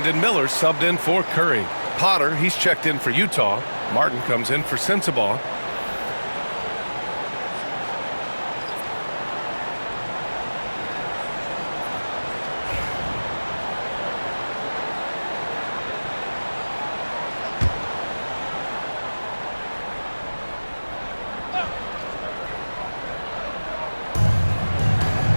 Miller subbed in for Curry. Potter, he's checked in for Utah. Martin comes in for Sensabaugh.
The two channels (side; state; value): both; inverted; correlation -1.00